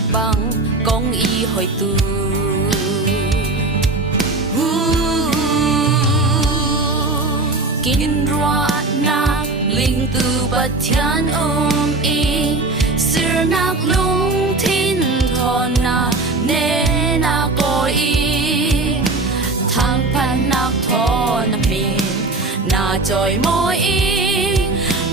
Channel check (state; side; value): quieter; left; 3.2 dB